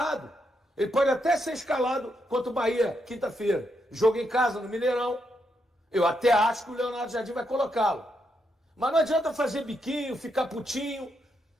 Ele pode até ser escalado contra o Bahia, quinta-feira. Jogo em casa, no Mineirão. Eu até acho que o Leonardo Jardim vai colocá-lo. Mas não adianta fazer biquinho, ficar putinho.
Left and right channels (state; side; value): normal; both; correlation 0.80